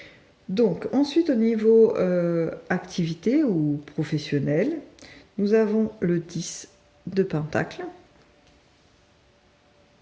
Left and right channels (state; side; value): identical; both; correlation 1.00